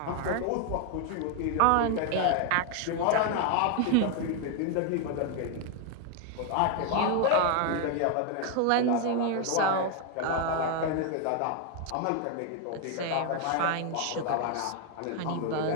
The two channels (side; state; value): both; different; correlation 0.00